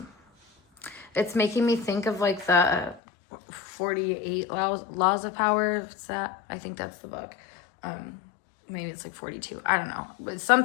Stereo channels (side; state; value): right; drops out; at 3.0 s